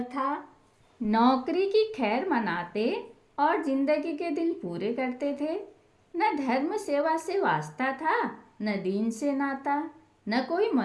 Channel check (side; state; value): both; identical; correlation 1.00